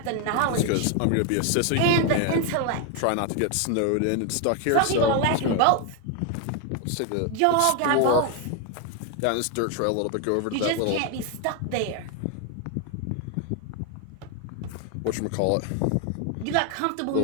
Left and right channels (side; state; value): both; different; correlation 0.01